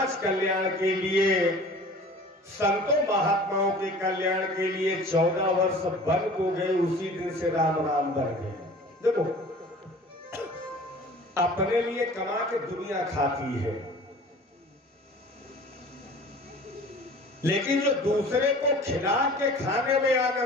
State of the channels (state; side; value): normal; both; correlation 0.44